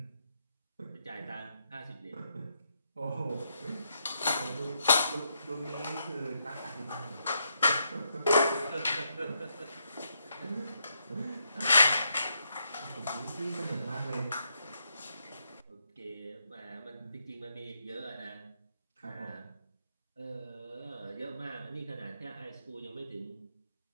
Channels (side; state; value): both; inverted; correlation -0.79